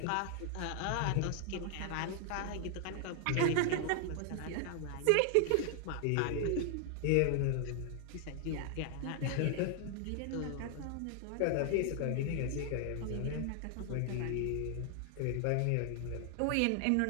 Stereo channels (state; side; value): different; both; correlation 0.00